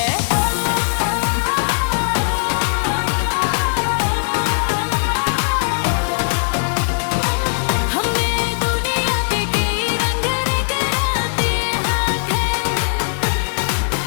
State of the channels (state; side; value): silent; right; 67 dB below the other